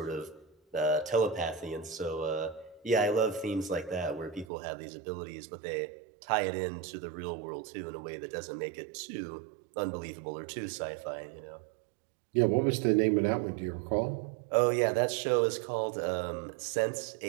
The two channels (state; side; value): drops out; left; at 4.5 s